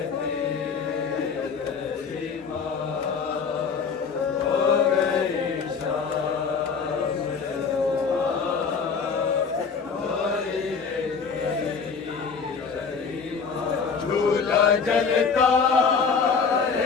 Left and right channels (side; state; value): right; quieter; 5.6 dB